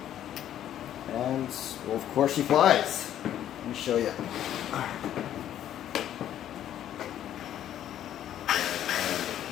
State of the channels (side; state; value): right; quieter; 11.2 dB